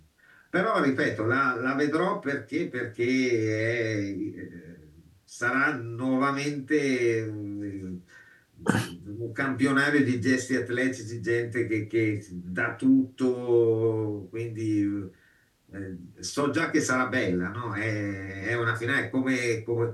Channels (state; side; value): identical; both; correlation 1.00